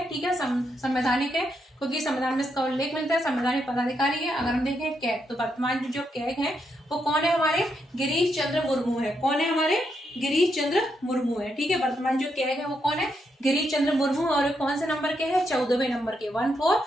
ठीक है, संवैधानिक है, क्योंकि संविधान में इसका उल्लेख मिलता है। संवैधानिक पदाधिकारी है। अगर हम देखें कैग, तो वर्तमान जो कैग है वो कौन है? हमारे गिरीश चंद्र मुर्मू है। कौन है? हमारे गिरीश चंद्र मुर्मू है। ठीक है, वर्तमान जो कैग है वो कौन है? गिरीश चंद्र मुर्मू। और कौन से नंबर के हैं? 14वें नंबर के,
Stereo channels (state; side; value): normal; both; correlation 0.80